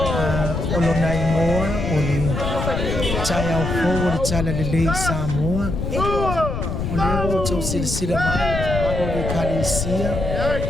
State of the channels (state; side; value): noise; left; rumble, 3 dB below the sound